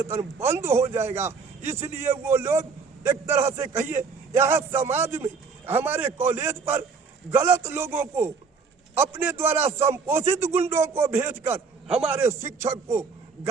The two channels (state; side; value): quieter; left; 5.0 dB